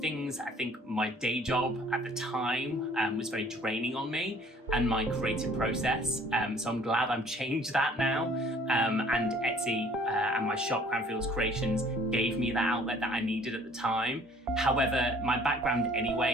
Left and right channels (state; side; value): normal; both; correlation 0.55